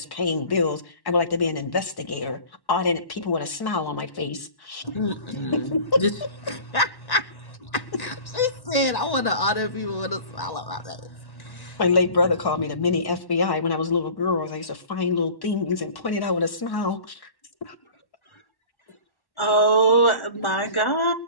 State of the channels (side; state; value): right; late; 1.1 ms